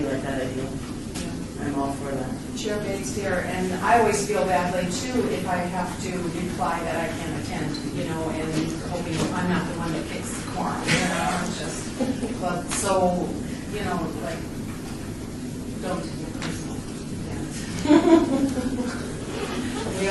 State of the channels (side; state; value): both; identical; correlation 1.00